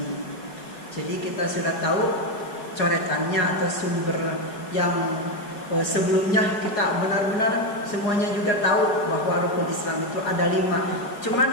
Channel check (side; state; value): right; late; 5.0 ms